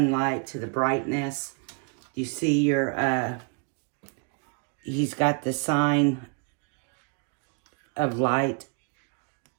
to the brightness. You see your, he's got the sign of light.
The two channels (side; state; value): left; quieter; 36.4 dB